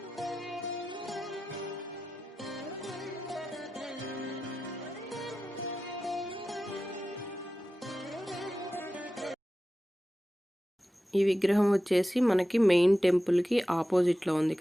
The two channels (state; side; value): normal; both; correlation 0.93